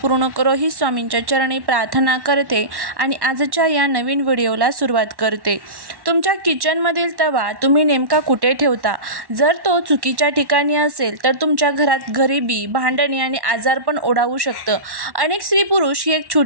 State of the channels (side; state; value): left; late; 1.1 ms